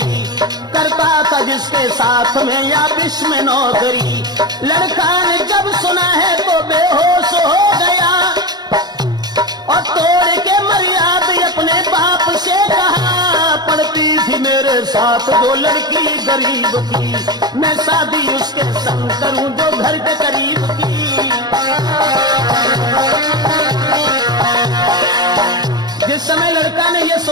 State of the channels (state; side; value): late; left; 0.20 ms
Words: करता था जिसके साथ में या विश्व में नौकरी। लड़का ने जब सुना है तो बेहोश हो गया और तोड़ के मर्यादा अपने बाप से कहा, पढ़ती थी मेरे साथ जो लड़की गरीब की, मैं शादी उसके संग करूं जो घर के करीब की। जिस समय लड़का ने यह